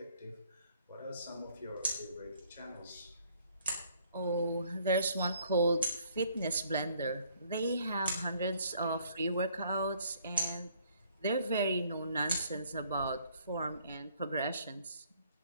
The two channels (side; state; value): both; inverted; correlation -0.63